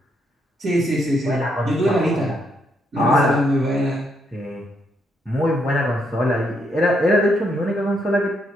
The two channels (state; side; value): normal; both; correlation 0.76